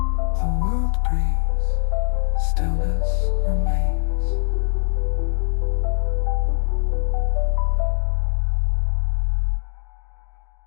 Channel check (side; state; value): right; silent; digital silence